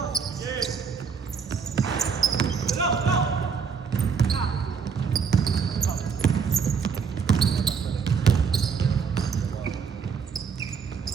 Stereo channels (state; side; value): quieter; left; 6.1 dB